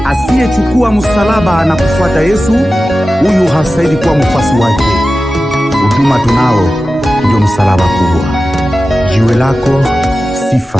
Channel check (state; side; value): normal; both; correlation 0.94